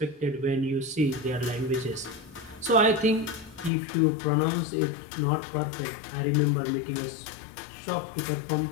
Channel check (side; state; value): right; drops out; at 3.7 s